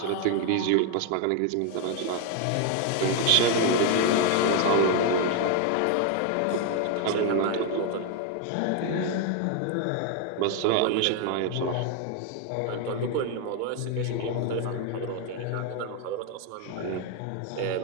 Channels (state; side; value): different; both; correlation 0.01